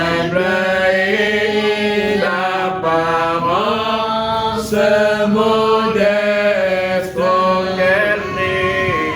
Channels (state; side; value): identical; both; correlation 1.00